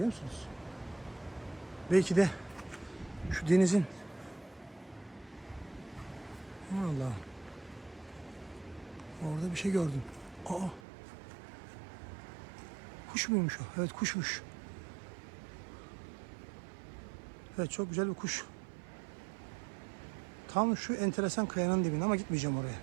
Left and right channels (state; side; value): drops out; left; at 10.8 s